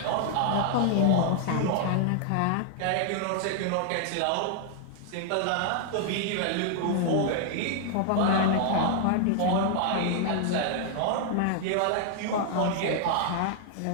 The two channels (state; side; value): different; both; correlation 0.00